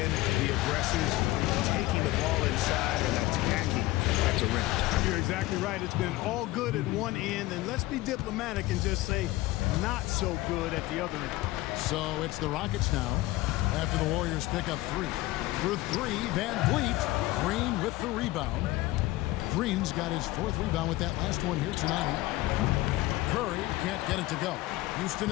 the aggressors, taking the ball inside and attacking at the rim. You're exactly right. It's been all good at one end, and let's be diplomatic and just say not so good at the other end. So it's the Rockets now after the Warriors pick up 3. For 3, Van Vliet. Green with the rebound. Green's got his 4th rebound with that last one here tonight. Curry can't get it to go. Houston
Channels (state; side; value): quieter; right; 18.3 dB